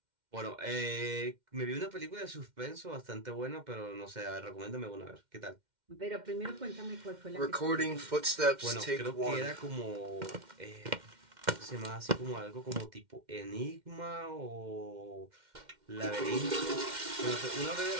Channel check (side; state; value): left; late; 2.1 ms